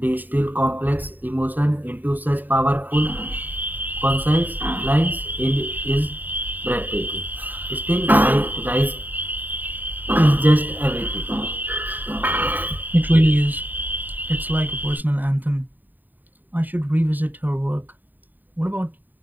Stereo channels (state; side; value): late; left; 0.088 ms